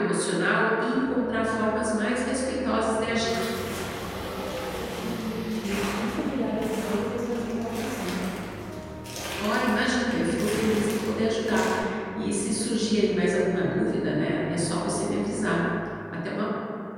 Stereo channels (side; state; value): both; identical; correlation 1.00